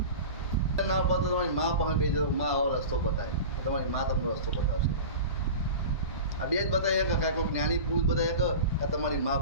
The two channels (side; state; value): both; inverted; correlation -0.32